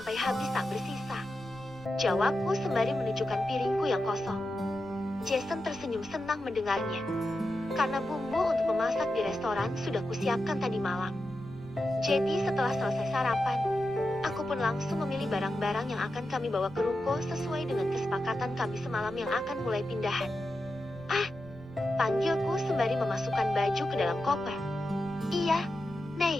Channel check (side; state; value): left; noise; rumble, 21 dB below the sound